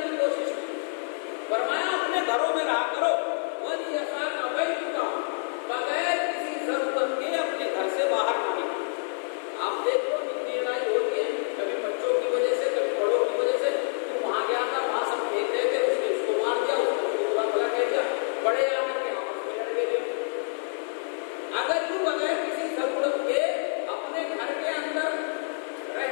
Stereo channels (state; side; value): silent; right; 60 dB below the other